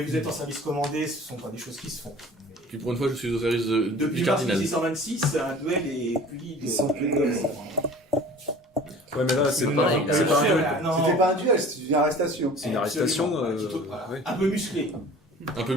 êtes en service commandé, ce ne sont pas des choses qui se font. Puis pour une fois, je suis au service Depuis du mars cardinal. 1626, un duel est puni de... Sans plus de gomme. Ouais, mais là, c'est Non, pas, non, c'est pas un duel. non. C'était pas un duel, c'était une arrestation. C'est une arrestation. Voilà. Ouais. Un peu musclé. Un peu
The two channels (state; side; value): normal; both; correlation 0.44